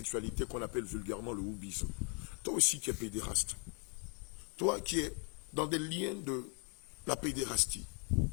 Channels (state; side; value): quieter; right; 38.3 dB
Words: qu'on appelle vulgairement le houbisme. Toi aussi qui es pédéraste, toi qui es dans des liens de la pédérastie,